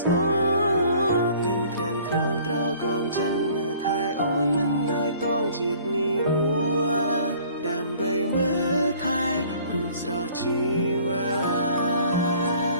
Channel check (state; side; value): inverted; both; correlation -0.54